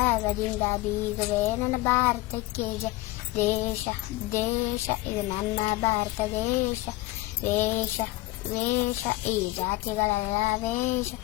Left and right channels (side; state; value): right; quieter; 18.6 dB